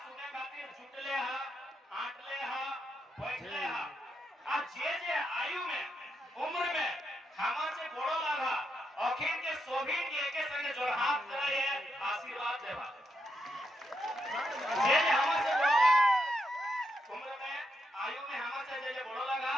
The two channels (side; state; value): both; normal; correlation 0.82